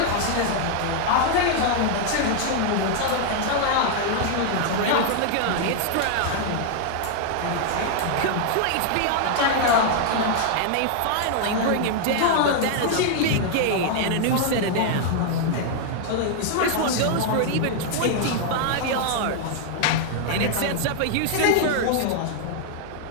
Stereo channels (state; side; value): different; both; correlation 0.00